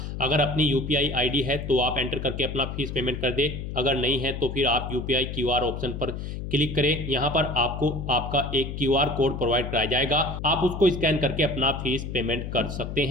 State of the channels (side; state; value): left; noise; hum, 6 dB below the sound